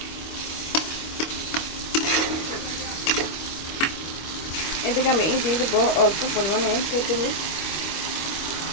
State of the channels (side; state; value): right; late; 25 ms